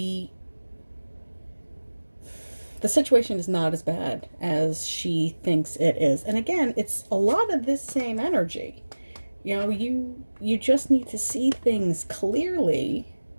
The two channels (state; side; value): inverted; both; correlation -1.00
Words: situation is not as bad as she thinks it is. And again, it's a lot of this same energy. You know, you just need to see things clearly.